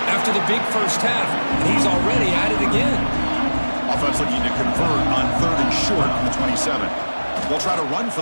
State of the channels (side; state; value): both; inverted; correlation -1.00